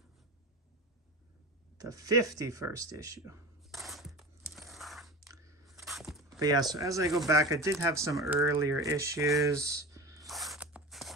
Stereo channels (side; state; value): both; normal; correlation 0.30